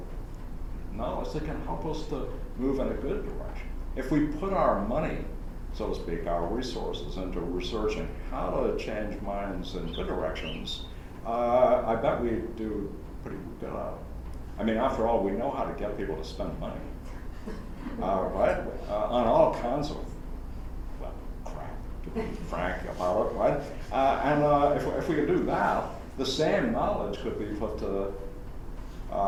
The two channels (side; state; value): both; identical; correlation 1.00